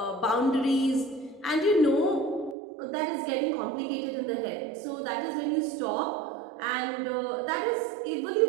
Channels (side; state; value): left; drops out; at 2.6 s